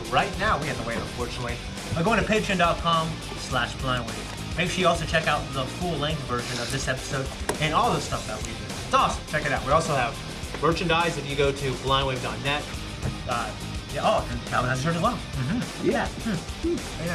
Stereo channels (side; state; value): both; identical; correlation 1.00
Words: right now. We have to wait, unfortunately. By going to patreon.com/blindwave. Make sure you also check out the full-length version of this episode and all the stuff that we do. It's awesome. Check it out. We also have merchandise if you go to blindwave.net. And Calvin has a shirt as well. Yeah. Very